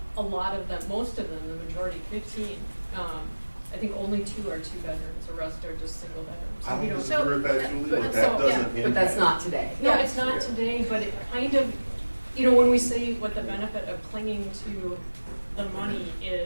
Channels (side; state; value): both; inverted; correlation -1.00